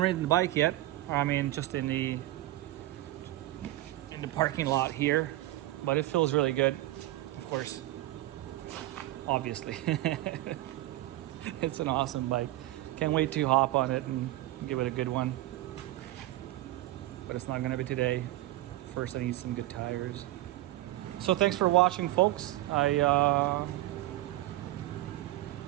the bike yet. I mean, just in the parking lot here, but it feels really good. Of course, obviously, it's an awesome bike. Can't wait to hop on it and give it a good one. But it's not gonna be today. First, I need some good tires. So thanks for watching, folks. I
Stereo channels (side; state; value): left; quieter; 16.2 dB